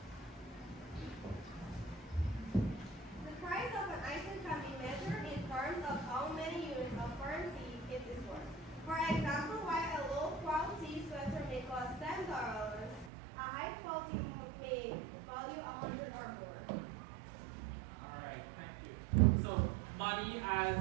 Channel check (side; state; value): left; drops out; at 13.1 s